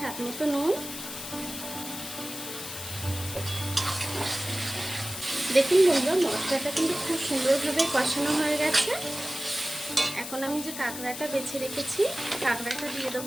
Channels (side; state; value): left; noise; hiss, 9 dB below the sound